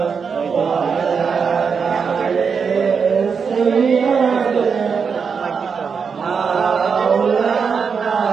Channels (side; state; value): left; quieter; 5.9 dB